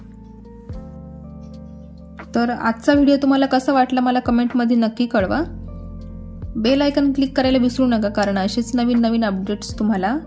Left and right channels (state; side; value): identical; both; correlation 1.00